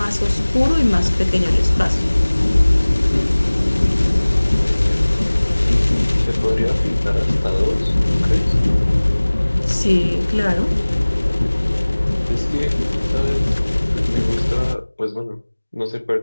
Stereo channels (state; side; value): inverted; both; correlation -1.00